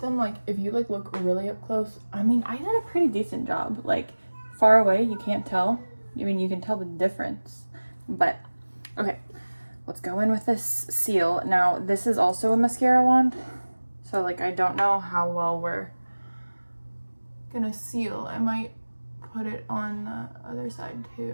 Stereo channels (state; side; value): inverted; both; correlation -1.00